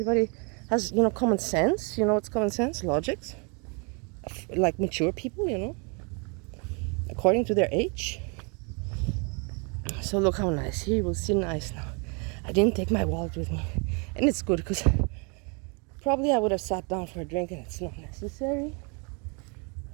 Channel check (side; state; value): left; quieter; 34.2 dB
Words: has, you know, common sense. You know what's common sense? Logics. Like mature people, you know, according to their age. So look how nice. Here you will see nice now. I didn't take my wallet with me. And it's good because probably I would have sat down for a drink and it's not necessary.